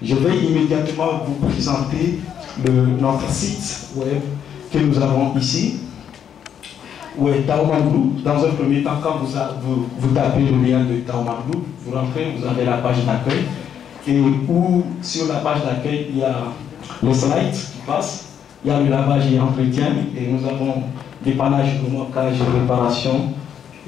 je vais immédiatement vous présenter notre site web que nous avons ici, où est Taoman Group. Dans un premier temps, quand vous tapez le lien de Taoman Group, vous rentrez, vous avez la page d'accueil, et où sur la page d'accueil, il y a le slide qui passe, il y a le lavage et entretien, et nous avons dépannage, remorquage et réparation,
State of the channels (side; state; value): right; quieter; 8.7 dB